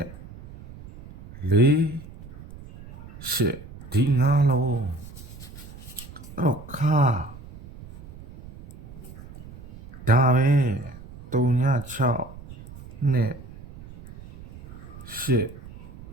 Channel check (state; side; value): noise; right; rumble, 16 dB below the sound